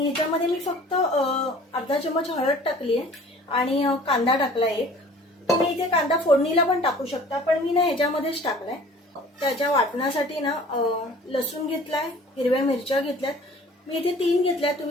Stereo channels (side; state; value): both; normal; correlation 0.48